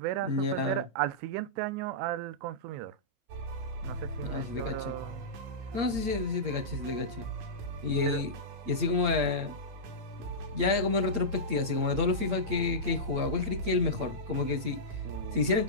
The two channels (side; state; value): left; late; 8.7 ms